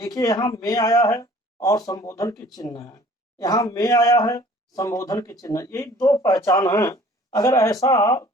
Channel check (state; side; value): normal; both; correlation 0.51